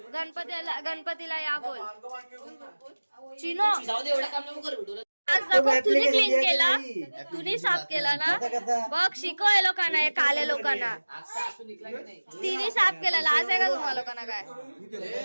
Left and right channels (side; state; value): both; inverted; correlation -1.00